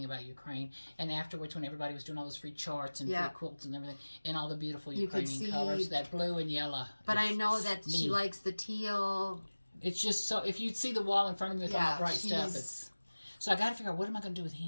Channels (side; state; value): both; inverted; correlation -1.00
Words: about Ukraine. And afterwards, when everybody was doing all those free charts and free quilts and everything, and all the beautiful Ukrainian colors, that blue and yellow. But I know that she likes the teal. It's just so, if you'd see the wall in front of me with all that bright stuff, it's... So I got to figure out, what am I going to do with